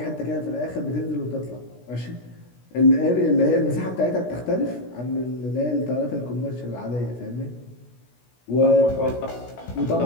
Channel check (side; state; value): right; late; 16 ms